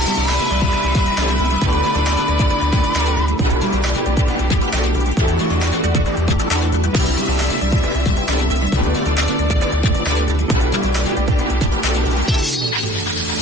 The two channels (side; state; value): both; normal; correlation 0.56